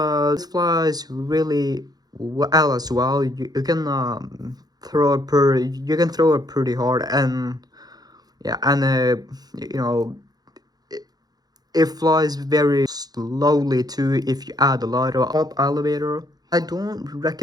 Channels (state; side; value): late; left; 0.19 ms